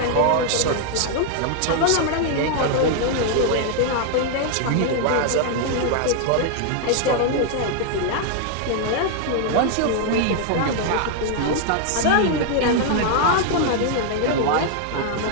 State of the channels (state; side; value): different; both; correlation 0.00